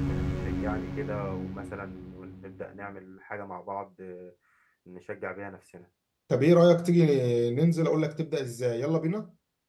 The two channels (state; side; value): identical; both; correlation 1.00